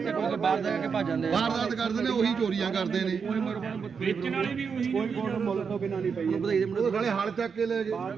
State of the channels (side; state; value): left; quieter; 6.0 dB